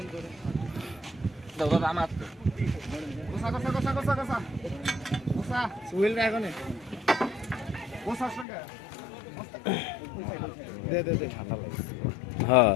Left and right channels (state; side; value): drops out; right; at 8.5 s